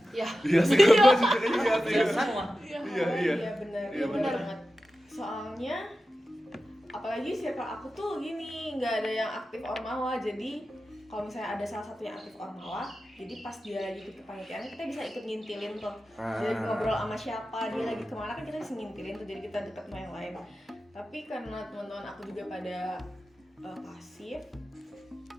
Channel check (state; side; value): normal; both; correlation 0.93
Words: Ya. Iya sih, gue juga iya sih. Ya semua. Iya, Iya, awalnya iya. iya benar. Iya, Iya benar. banget. Soalnya apalagi circle aku tuh gini, nggak ada yang aktif ormawa. Jadi kalau misalnya ada salah satu yang aktif ormawa, jadi pas dia lagi ikut kepanitiaan kita bisa ikut ngintilin tuh. Jadi ngobrol sama siapa, dia lagi kemana kan kita bisa ngintilin tuh, jadi kita deket sama yang lain. Tapi karena teman-teman aku juga pada pasif,